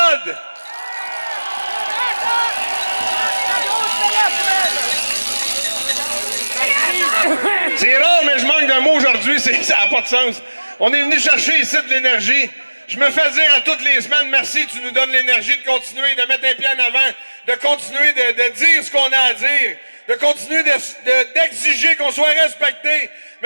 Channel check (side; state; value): both; inverted; correlation -1.00